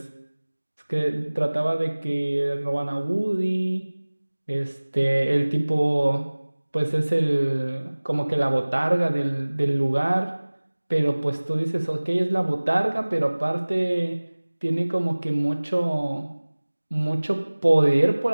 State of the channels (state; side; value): inverted; both; correlation -1.00